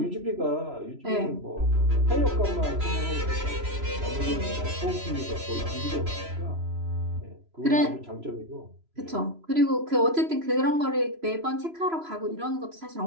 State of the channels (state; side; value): late; left; 3.0 ms